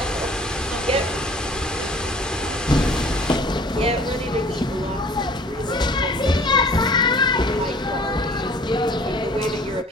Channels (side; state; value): both; normal; correlation 0.51